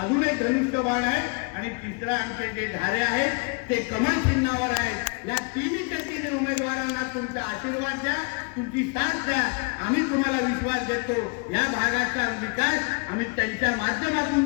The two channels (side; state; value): right; quieter; 34.3 dB